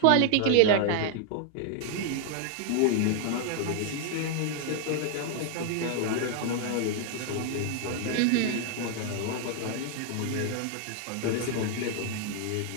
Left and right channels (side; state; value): both; different; correlation 0.00